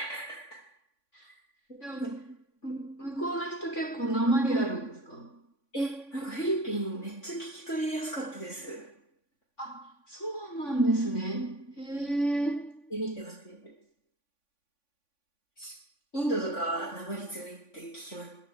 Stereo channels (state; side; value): late; right; 3.5 ms